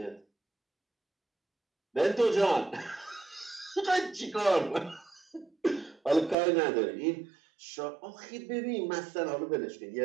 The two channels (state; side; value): drops out; left; at 6.4 s